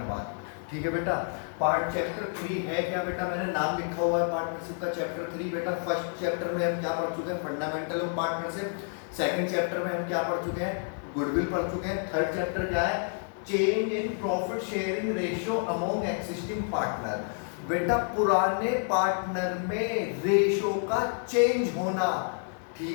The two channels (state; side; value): silent; right; 56 dB below the other